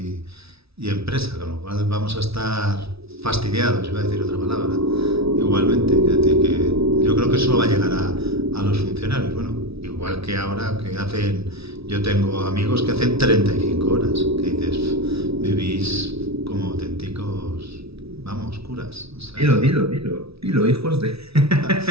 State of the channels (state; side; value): late; left; 0.77 ms